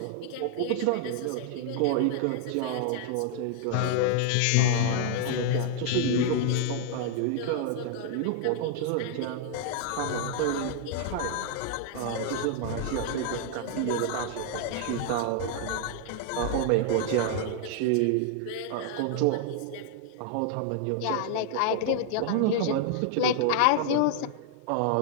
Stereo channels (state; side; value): different; both; correlation 0.00